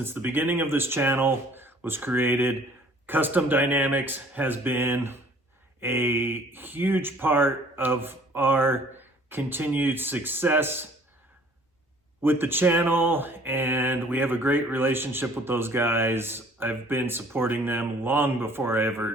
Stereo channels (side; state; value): both; normal; correlation 0.54